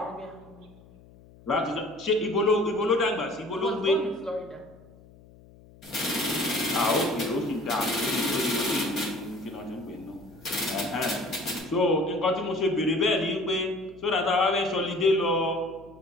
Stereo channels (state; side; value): noise; left; hum, 24 dB below the sound